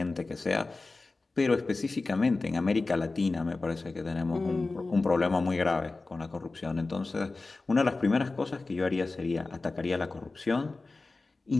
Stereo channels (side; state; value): right; quieter; 3.5 dB